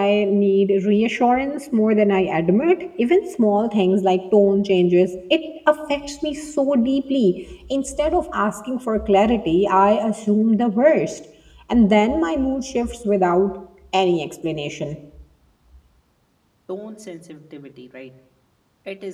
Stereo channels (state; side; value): identical; both; correlation 1.00